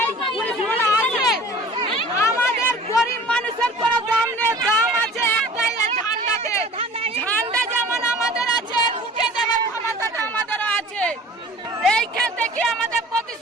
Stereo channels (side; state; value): both; normal; correlation 0.45